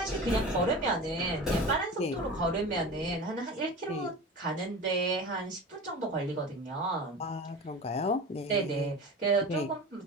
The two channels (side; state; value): both; normal; correlation 0.33